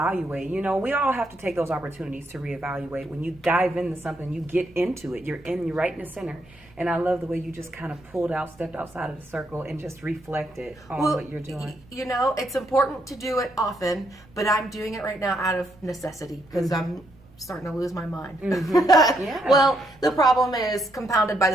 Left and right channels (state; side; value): noise; right; rumble, 27 dB below the sound